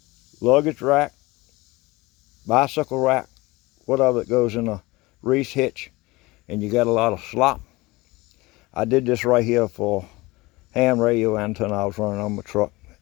luggage rack, bicycle rack, whatever that goes in a Reese hitch, and you got a lot of slop. I did this right here for ham radio antenna I was running on my truck.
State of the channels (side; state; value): right; quieter; 21.9 dB